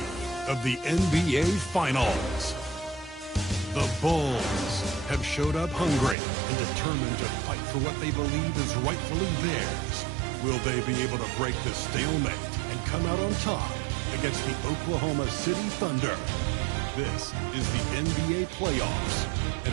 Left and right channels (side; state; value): left; drops out; at 6.2 s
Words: of the NBA Finals. The Bulls have showed up hungry and determined to fight for what they believe is rightfully theirs. Will they be able to break the stalemate and come out on top against the Oklahoma City Thunder? This is the NBA Playoffs, and